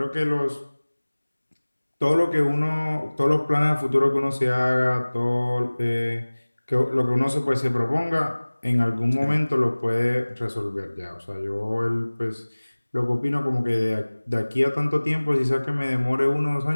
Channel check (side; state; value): both; inverted; correlation -1.00